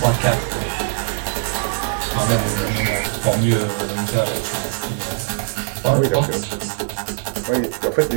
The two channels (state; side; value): silent; left; digital silence